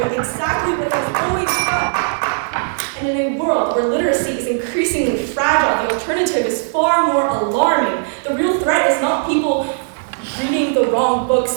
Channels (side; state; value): left; silent; digital silence